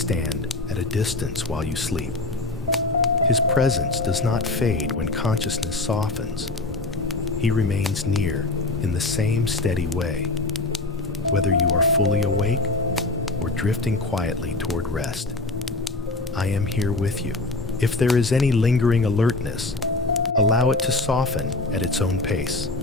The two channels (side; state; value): right; quieter; 3.1 dB